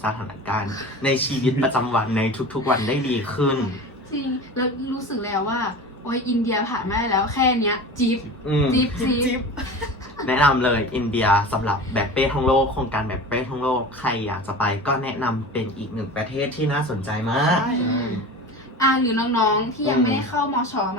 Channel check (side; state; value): both; normal; correlation 0.34